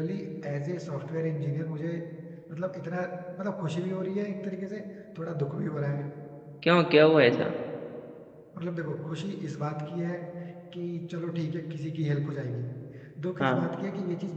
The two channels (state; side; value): identical; both; correlation 1.00